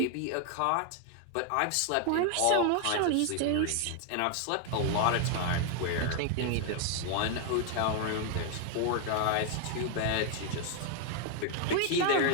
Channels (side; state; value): both; different; correlation 0.00